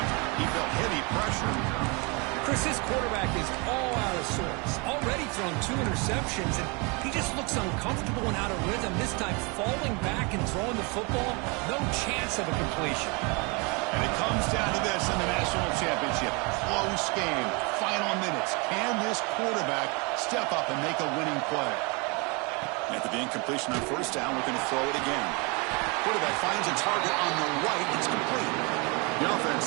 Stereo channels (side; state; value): left; quieter; 30.3 dB